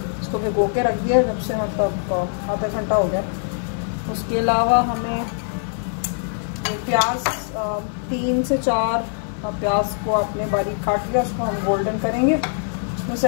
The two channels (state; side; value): silent; right; digital silence